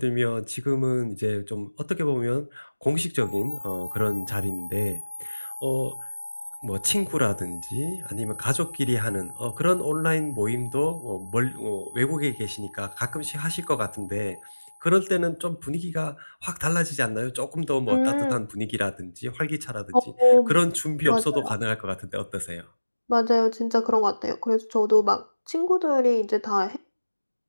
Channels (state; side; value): inverted; both; correlation -1.00